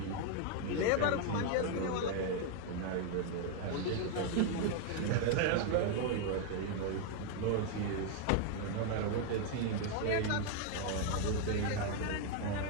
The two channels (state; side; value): different; both; correlation 0.01